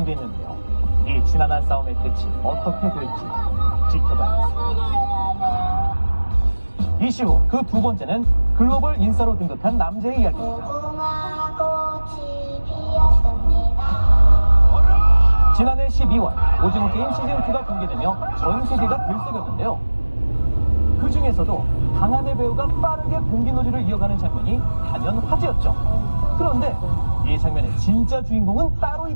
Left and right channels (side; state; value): both; inverted; correlation -1.00